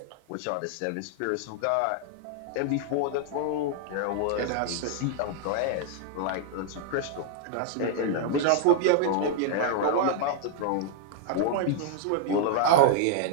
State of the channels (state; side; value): different; both; correlation 0.00